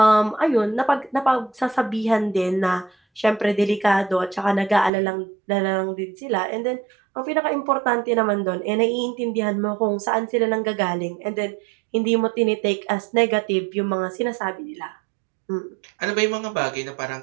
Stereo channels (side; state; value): left; drops out; at 4.9 s